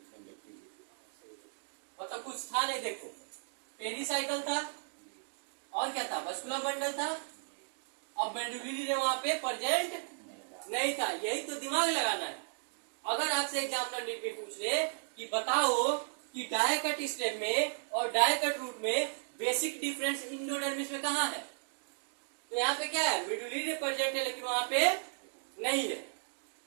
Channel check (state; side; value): silent; left; digital silence